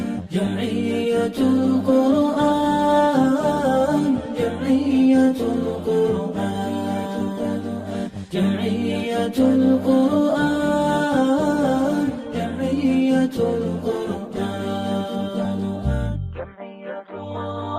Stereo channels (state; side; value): identical; both; correlation 1.00